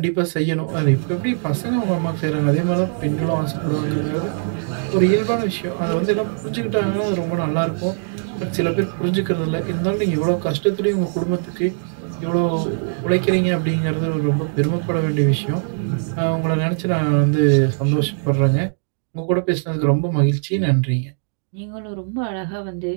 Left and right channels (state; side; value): silent; left; digital silence